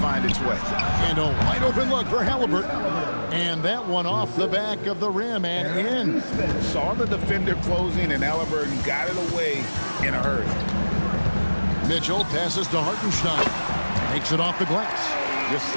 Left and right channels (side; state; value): both; inverted; correlation -1.00